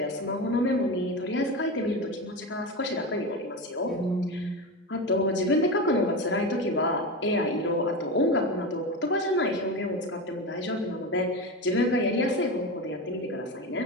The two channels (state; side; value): normal; both; correlation 0.21